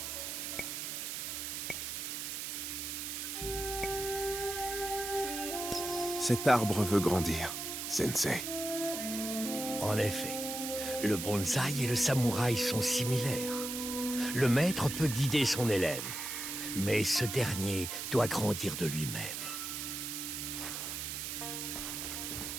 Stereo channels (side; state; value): right; noise; hiss, 5 dB below the sound